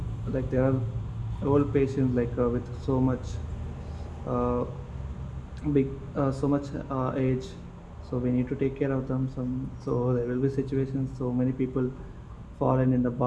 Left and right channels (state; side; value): identical; both; correlation 1.00